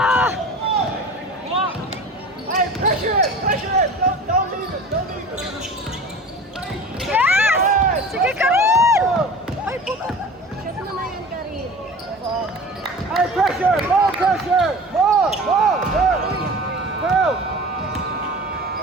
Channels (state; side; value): normal; both; correlation 0.38